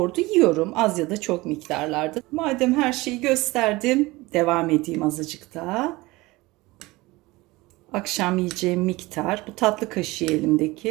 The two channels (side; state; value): left; quieter; 21.2 dB